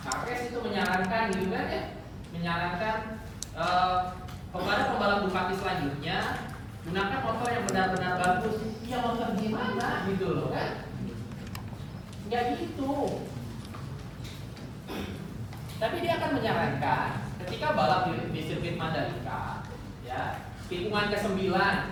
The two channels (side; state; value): both; identical; correlation 1.00